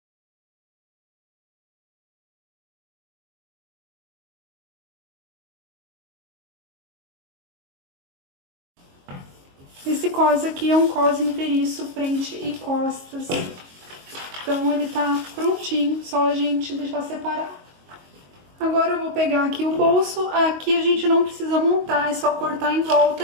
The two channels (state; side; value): late; left; 22 ms